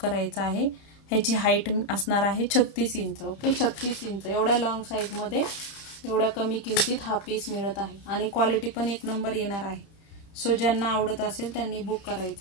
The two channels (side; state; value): right; late; 30 ms